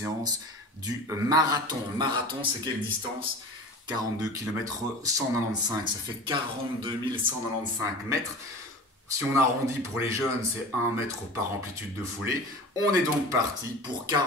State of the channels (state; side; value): normal; both; correlation 0.36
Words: du marathon. Marathon, c'est quelle distance? 42 km 195, ça fait 42 195 mètres. Si on arrondit pour les jeunes, c'est 1 mètre par amplitude de foulée. On est donc parti pour